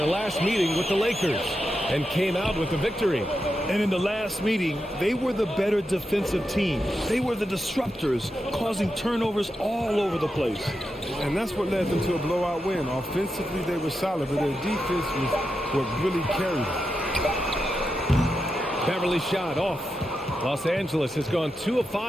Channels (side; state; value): both; normal; correlation 0.88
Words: last meeting with the Lakers and came out with the victory. And in the last meeting, they were the better defensive team. They were the disruptors, causing turnovers all over the place. And that's what led them to a blowout win. Offensively, they were solid, but their defense was what really carried them. Beverly shot off. Los Angeles has gone 2 of